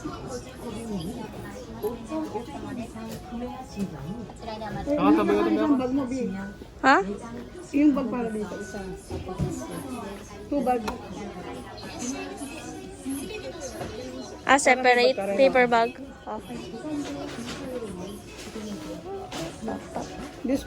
Nakatabi ko Isang bag mo, B. Ha? Yung bag para dito, isa. 2 bag. Ah, separate paper bag. Okay. This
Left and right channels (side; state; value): both; identical; correlation 1.00